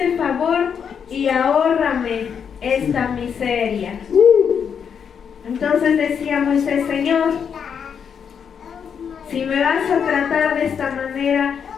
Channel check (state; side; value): quieter; right; 7.2 dB